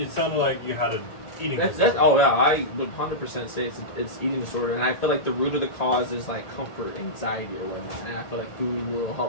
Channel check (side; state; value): right; late; 1.8 ms